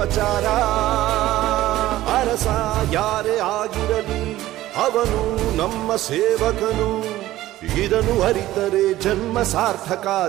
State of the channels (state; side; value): quieter; left; 15.4 dB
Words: ಅರಸ ಯಾರೇ ಆಗಿರಲಿ ಅವನು ನಮ್ಮ ಸೇವಕನು, ಇದನ್ನು ಅರಿತರೆ ಜನ್ಮ ಸಾರ್ಥಕ.